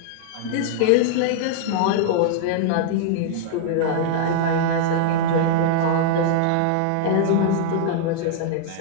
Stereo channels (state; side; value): different; both; correlation -0.01